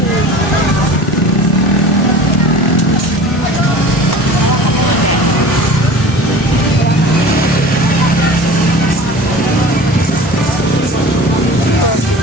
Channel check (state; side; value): normal; both; correlation 0.40